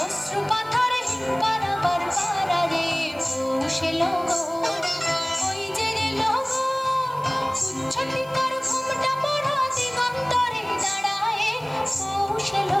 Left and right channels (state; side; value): noise; right; hiss, 25 dB below the sound